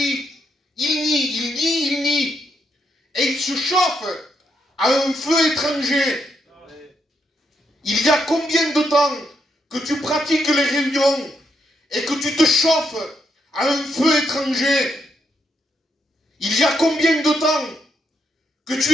Il nie. Et il se chauffe à un feu étranger. Il y a combien de temps que tu pratiques les réunions et que tu te chauffes à un feu étranger? Il y a combien de temps que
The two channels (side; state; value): both; normal; correlation 0.78